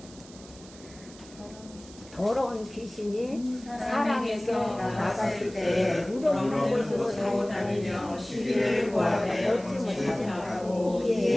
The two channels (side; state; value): right; noise; hiss, 20 dB below the sound